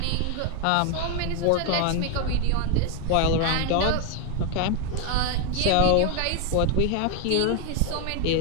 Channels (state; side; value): different; both; correlation 0.01